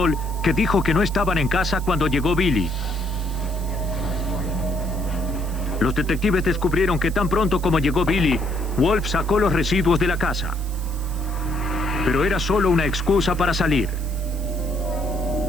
que dijo que no estaban en casa cuando llegó Billy. Los detectives descubrieron que tan pronto como llegó Billy, Wolf sacó los residuos de la casa. Pero era solo una excusa para salir.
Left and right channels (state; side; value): noise; right; hiss, 18 dB below the sound